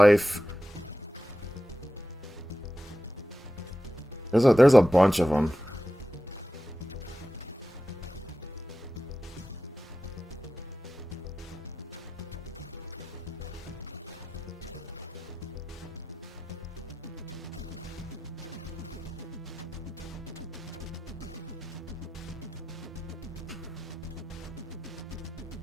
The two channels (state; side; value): normal; both; correlation 0.92